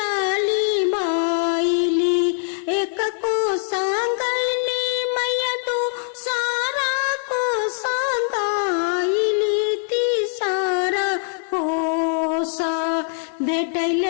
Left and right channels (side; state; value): right; silent; 64 dB below the other